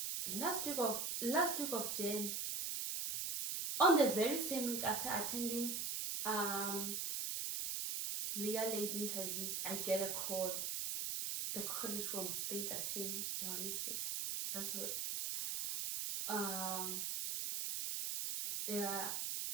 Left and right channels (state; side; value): noise; right; hiss, 1 dB below the sound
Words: Last week of Jan, on the very same week after attending Legal Aid interviews, I get a call. The call is from State Attorney Johannesburg. That's what they are